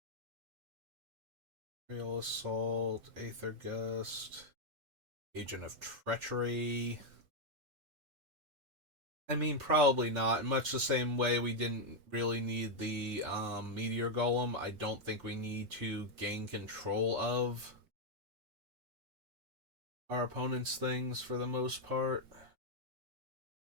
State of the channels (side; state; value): left; late; 5.6 ms